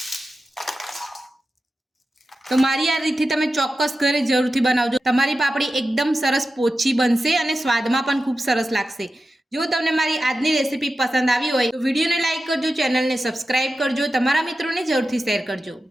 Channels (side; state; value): both; normal; correlation 0.92